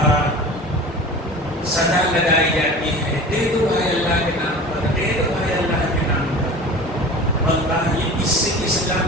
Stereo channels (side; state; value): both; normal; correlation 0.37